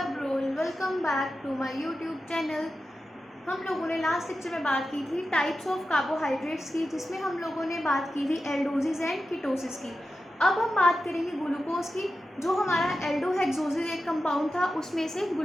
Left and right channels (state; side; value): normal; both; correlation 0.92